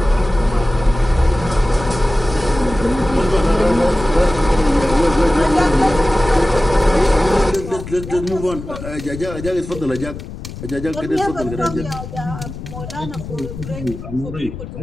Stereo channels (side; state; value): left; noise; rumble, 11 dB below the sound